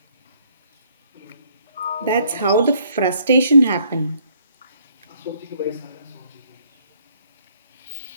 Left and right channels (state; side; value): inverted; both; correlation -0.66